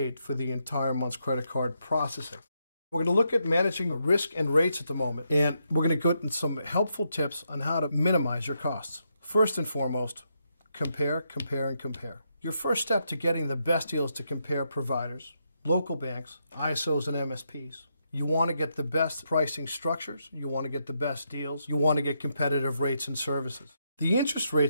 for the entire month's credit card processing. We're going to look at managing risk and rates at the moment, and we're going to go into some helpful tips on how to minimize your costs. First and foremost, compare, compare, and compare. Your first step to getting the best deal is to compare providers, local banks, ISOs, and MSPs. You want to get the best pricing structures, you want to get the best deals, you want to get competitive rates and services. The interest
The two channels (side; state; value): both; inverted; correlation -0.80